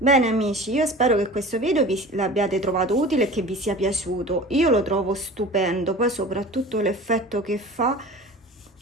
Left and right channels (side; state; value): both; normal; correlation 0.38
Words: amici, io spero che questo video vi l'abbiate trovato utile e che vi sia piaciuto. Io lo trovo stupendo, poi soprattutto l'effetto che